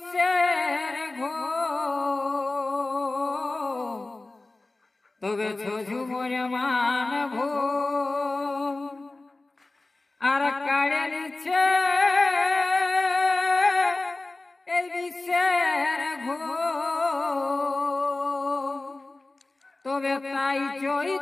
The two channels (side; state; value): right; quieter; 3.1 dB